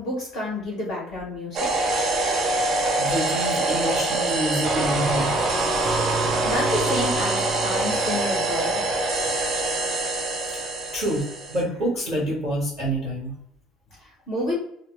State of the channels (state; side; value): normal; both; correlation 0.59